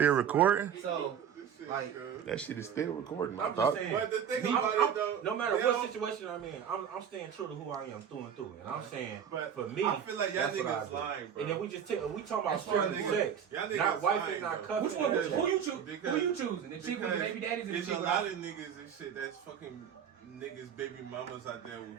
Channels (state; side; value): quieter; left; 8.2 dB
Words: recording. So, like, That shit is still recording. I I'm thought. just saying. But the thing about it though, No matter they what don't- situation I'm in, I'm staying true to who I am through and through. And I'm saying, But for me, I feel like y'all that's what I niggas do. lying, bro. And then we talking about That's strictly y'all sex, Y'all niggas not wifing, lying, not though. cuffing. which one? and Who you that choose? Because- Who you choosing? The chick with the baby daddies or the there's chick a with lot of niggas and shit that's fucking niggas, baby mamas out there